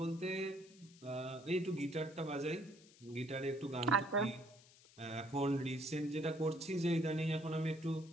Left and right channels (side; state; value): left; noise; hiss, 24 dB below the sound